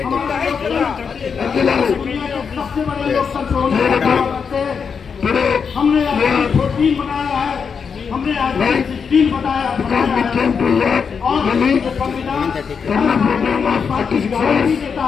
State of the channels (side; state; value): right; quieter; 6.2 dB